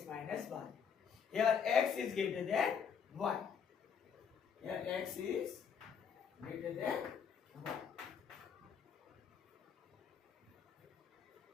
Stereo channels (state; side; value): quieter; right; 7.1 dB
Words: minus y. Here x is greater than y. Here x is greater than y.